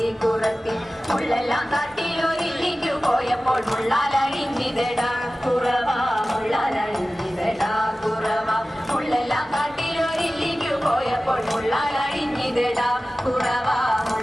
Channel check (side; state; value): both; normal; correlation 0.96